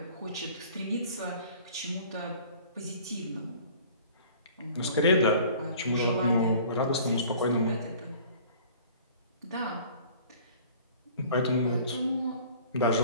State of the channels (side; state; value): both; inverted; correlation -0.49